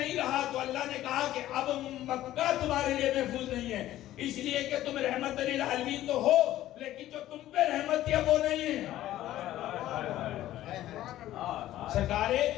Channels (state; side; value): quieter; right; 14.0 dB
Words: رہا تو اللہ نے کہا کہ اب مکہ تمہارے لیے محفوظ نہیں ہے، اس لیے کہ تم رحمت للعالمین تو ہو لیکن جو تم پہ رحمت تھی وہ نہیں ہے. سرکار